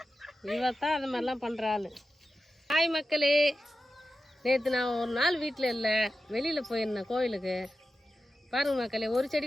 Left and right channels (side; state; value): both; normal; correlation 0.92